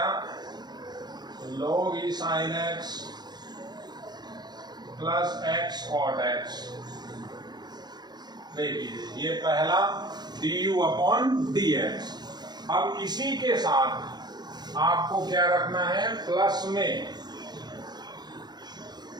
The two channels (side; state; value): left; late; 0.20 ms